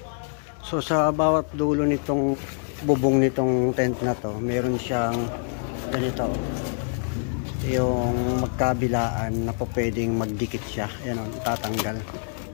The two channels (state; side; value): silent; right; 61 dB below the other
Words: So sa bawat dulo nitong bubong nitong tent na to, meron siyang ganito. Yung magkabilaan na po pwedeng magdikit siya. Ayan o, itatanggal.